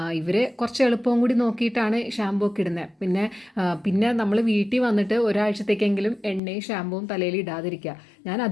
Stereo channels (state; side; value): drops out; right; at 6.4 s